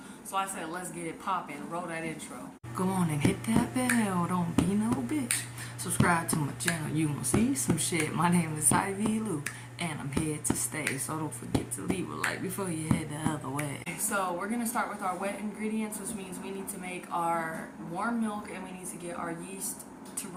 So I said, let's get it poppin'. Roll that intro. Go on and hit that bell. Don't be no bitch. Subscribe to my channel. You gonna see some shit. My name is Ivy Lou, and I'm here to stay. So don't forget to leave a like before you head the other way. So we're gonna start with our wet ingredients, which means we need to make our warm milk and we need to get our yeast to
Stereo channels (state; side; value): identical; both; correlation 1.00